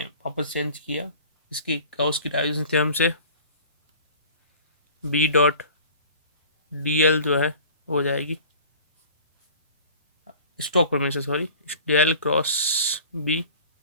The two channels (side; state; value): both; inverted; correlation -0.43